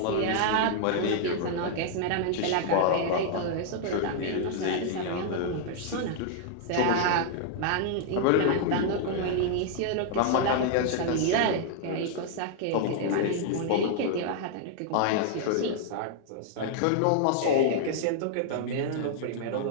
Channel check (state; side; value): different; both; correlation -0.01